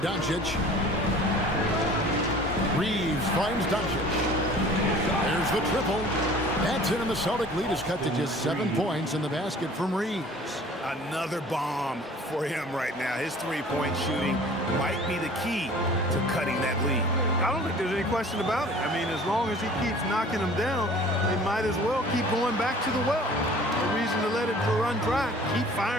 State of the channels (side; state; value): both; normal; correlation 0.47